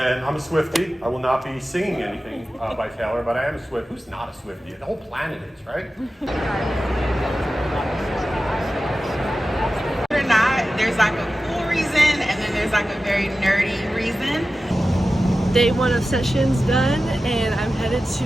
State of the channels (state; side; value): normal; both; correlation 0.94